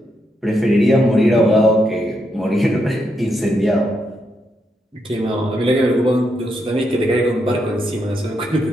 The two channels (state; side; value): normal; both; correlation 0.80